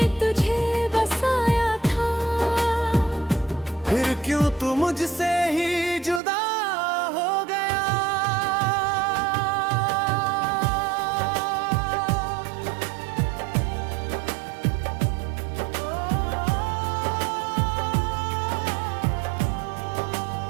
तुझे बसाया था, फिर क्यों तू मुझसे ही जुदा हो गया।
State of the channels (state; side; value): drops out; left; at 6.2 s